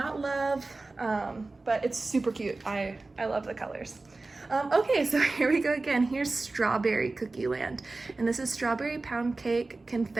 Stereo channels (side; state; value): left; quieter; 3.4 dB